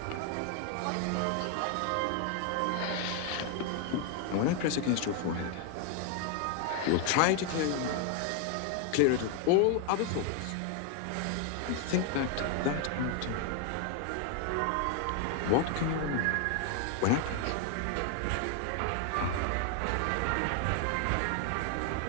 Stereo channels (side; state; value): both; different; correlation 0.00